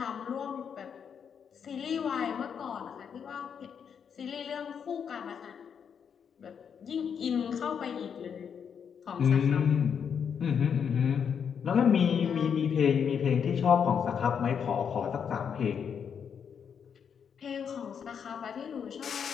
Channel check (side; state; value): right; quieter; 7.3 dB